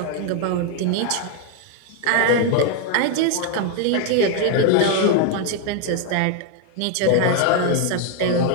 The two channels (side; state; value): both; different; correlation 0.01